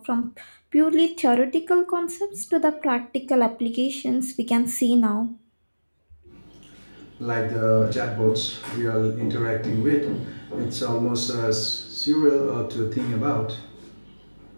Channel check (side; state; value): both; inverted; correlation -1.00